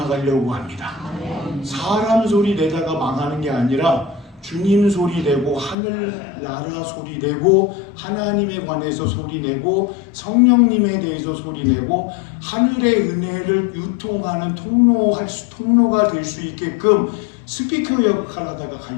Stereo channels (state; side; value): drops out; right; at 5.8 s